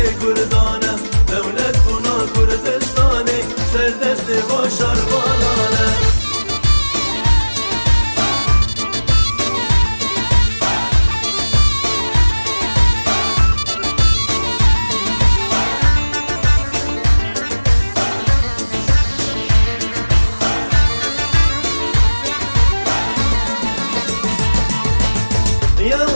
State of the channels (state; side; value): inverted; both; correlation -1.00